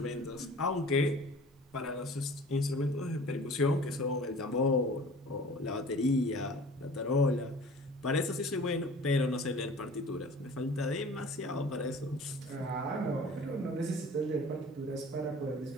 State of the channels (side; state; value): both; normal; correlation 0.44